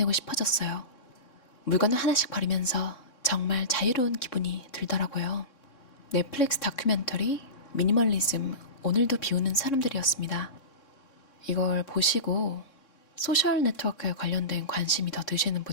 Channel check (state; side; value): late; right; 3.6 ms